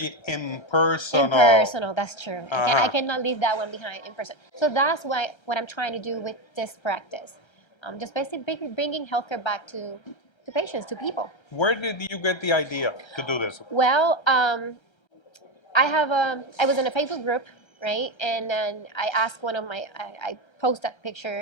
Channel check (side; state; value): right; late; 1.3 ms